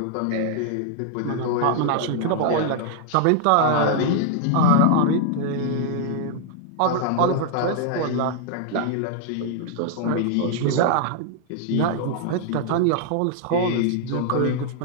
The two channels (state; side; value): different; both; correlation -0.01